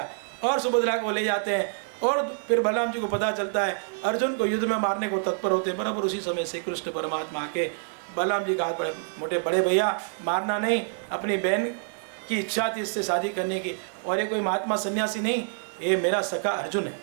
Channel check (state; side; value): silent; left; digital silence